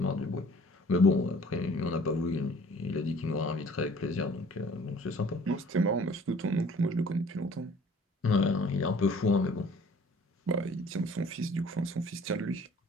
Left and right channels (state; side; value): normal; both; correlation 0.52